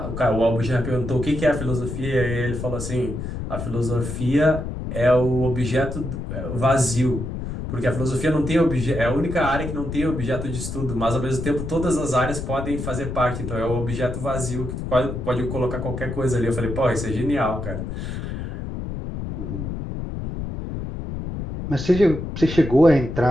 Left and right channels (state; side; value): noise; left; rumble, 6 dB below the sound